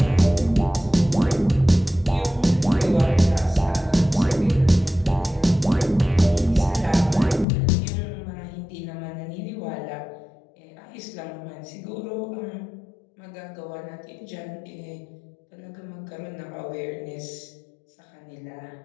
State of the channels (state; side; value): drops out; right; at 7.5 s